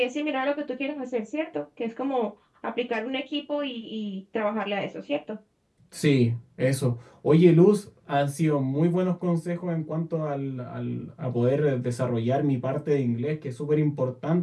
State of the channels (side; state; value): both; identical; correlation 1.00